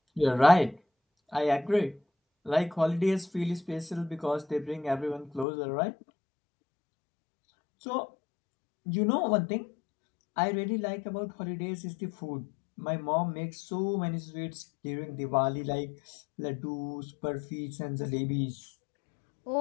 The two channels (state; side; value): drops out; right; at 5.5 s